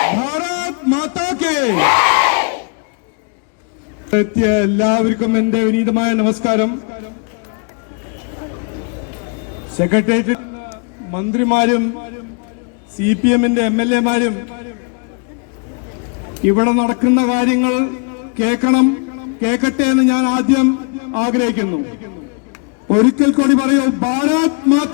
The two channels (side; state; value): right; quieter; 37.3 dB